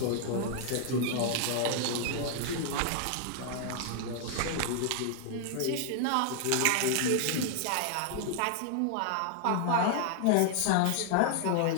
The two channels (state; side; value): different; both; correlation 0.00